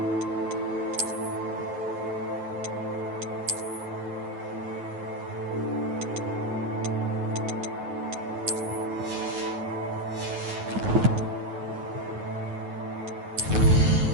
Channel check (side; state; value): left; late; 9.4 ms